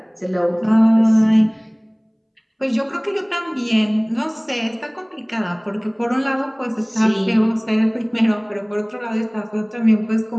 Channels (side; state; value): both; identical; correlation 1.00